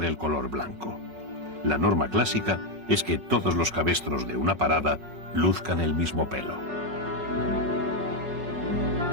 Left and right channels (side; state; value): left; late; 5.5 ms